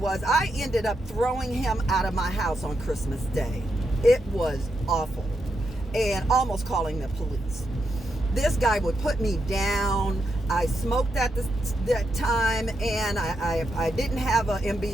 was I ended up throwing him out of my house on Christmas Day. It was awful, and almost calling the police. This guy would put me down. I smoked at that time, and I didn't have an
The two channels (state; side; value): normal; both; correlation 0.83